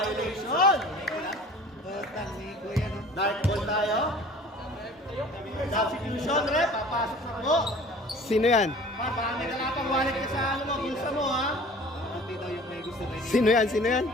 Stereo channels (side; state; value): both; normal; correlation 0.46